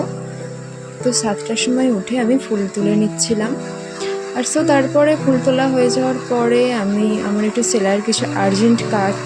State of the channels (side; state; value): both; identical; correlation 1.00